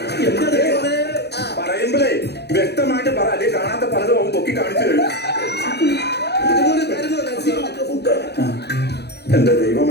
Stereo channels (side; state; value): right; late; 0.48 ms